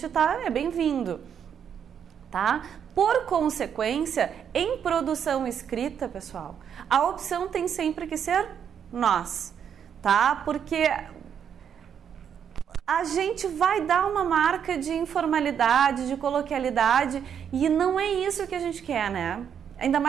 é bem-vindo, tá? Por consequência, em produção escrita, pessoal, a opção tem sempre que ser nós, tá? Porque a gente vai dar uma marca de informalidade, de coloquialidade, e não é isso que a gente quer, né? ainda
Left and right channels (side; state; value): left; quieter; 8.2 dB